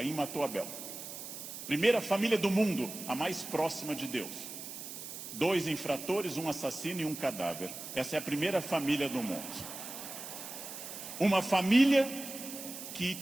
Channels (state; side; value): noise; right; hiss, 10 dB below the sound